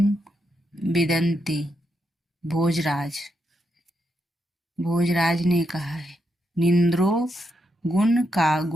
विदन्ति। भोजराज ने कहा है। निंद्रो गुण का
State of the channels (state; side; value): normal; both; correlation 0.82